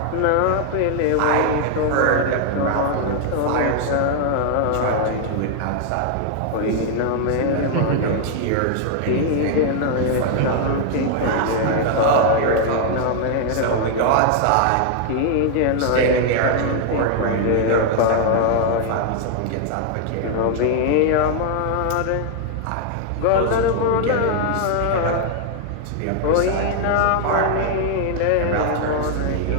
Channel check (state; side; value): different; both; correlation 0.00